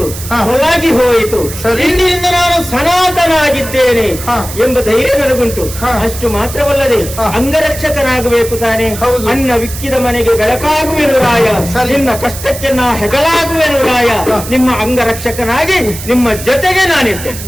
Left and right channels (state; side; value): noise; right; hiss, 11 dB below the sound